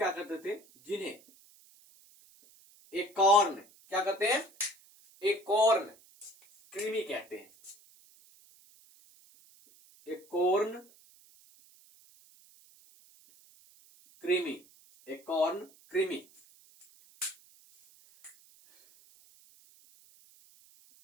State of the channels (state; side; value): noise; right; hiss, 27 dB below the sound